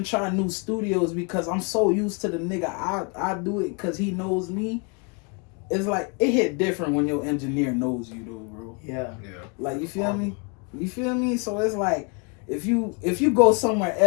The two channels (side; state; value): right; quieter; 33.9 dB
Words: try new studios because I'm so used to the nigga. I do it because he knows me. It's like, it hit different when your engineer knows you though, bro. Yeah. Like, you feel me? You feel me? So it's like, if you go somewhere